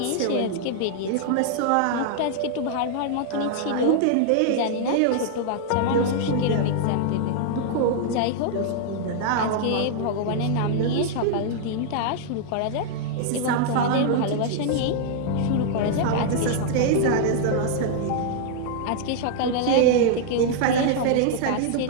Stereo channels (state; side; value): different; both; correlation -0.01